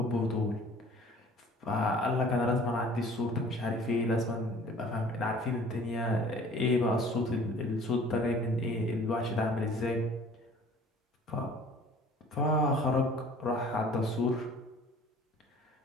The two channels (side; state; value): both; normal; correlation 0.50